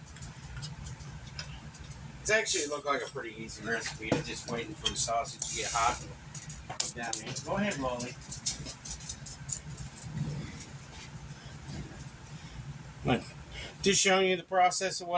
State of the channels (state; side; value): identical; both; correlation 1.00